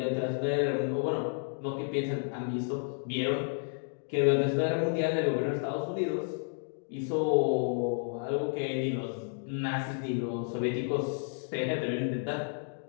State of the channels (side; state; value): right; silent; 57 dB below the other